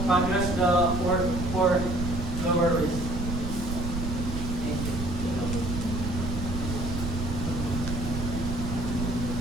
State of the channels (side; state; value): right; noise; rumble, 4 dB below the sound